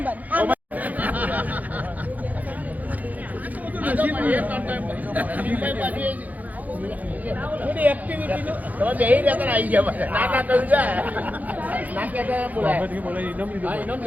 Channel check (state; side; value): late; left; 0.079 ms